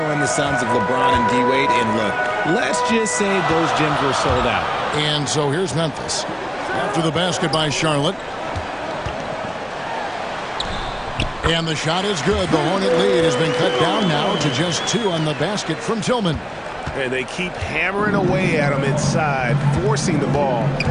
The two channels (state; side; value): identical; both; correlation 1.00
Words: in the sons of LeBron and D-Wade, and look, let's just say those gyms were sold out. And so here's Memphis. After the basket by Charlotte. And the shot is good. The Hornet lead has been cut down now to just 2 on the basket from Tillman. And they keep hammering away at him inside, forcing the ball